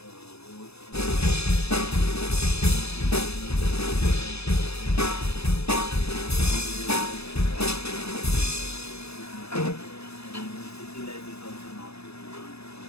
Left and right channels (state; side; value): late; right; 0.79 ms